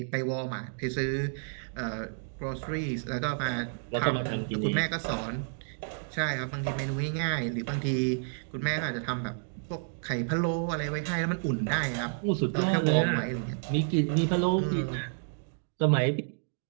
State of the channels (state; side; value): silent; left; digital silence